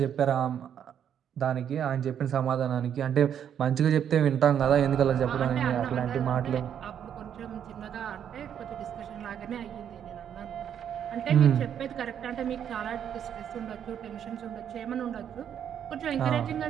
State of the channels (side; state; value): left; quieter; 9.0 dB